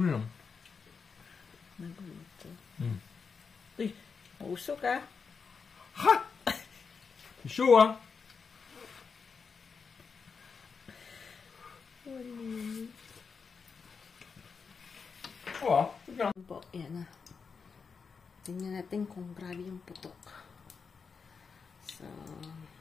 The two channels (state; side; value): quieter; right; 5.5 dB